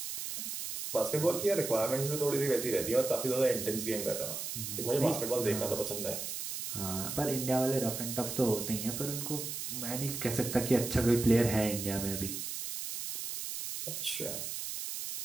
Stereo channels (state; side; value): noise; right; hiss, 5 dB below the sound